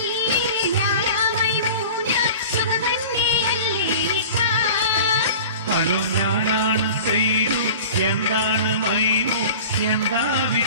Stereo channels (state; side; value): inverted; both; correlation -0.39